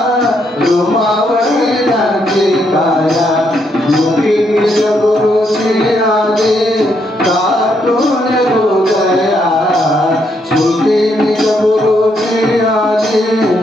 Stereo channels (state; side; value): normal; both; correlation 0.76